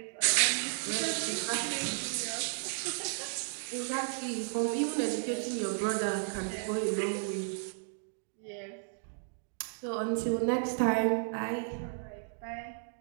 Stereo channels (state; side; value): silent; left; digital silence